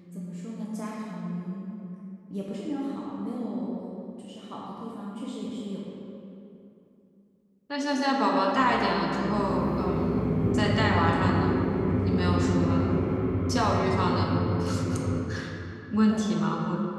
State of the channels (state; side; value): identical; both; correlation 1.00